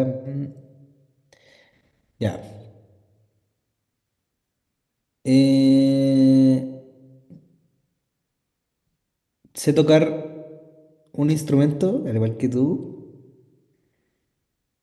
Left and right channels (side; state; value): both; identical; correlation 1.00